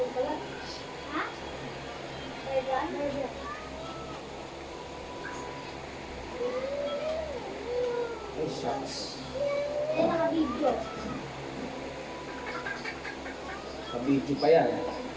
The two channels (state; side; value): identical; both; correlation 1.00